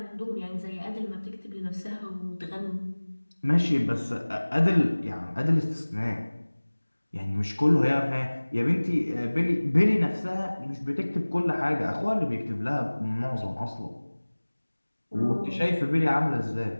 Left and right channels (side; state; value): both; inverted; correlation -1.00